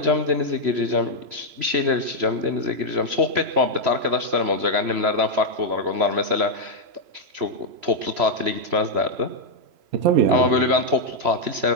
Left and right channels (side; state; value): left; late; 3.0 ms